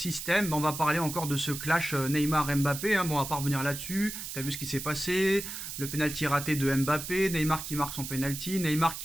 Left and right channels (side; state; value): right; noise; hiss, 8 dB below the sound